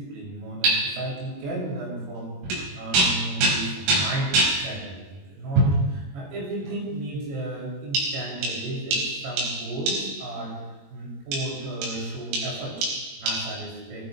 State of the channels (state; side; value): late; left; 22 ms